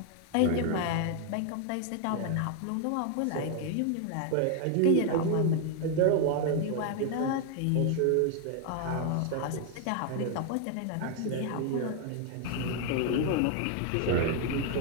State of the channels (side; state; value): both; different; correlation 0.00